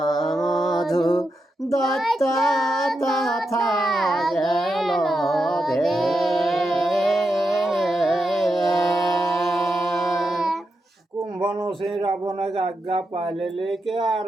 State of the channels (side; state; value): both; normal; correlation 0.86